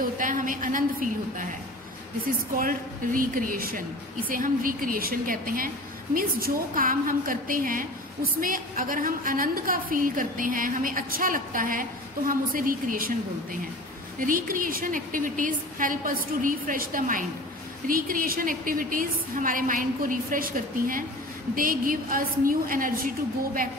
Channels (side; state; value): both; normal; correlation 0.38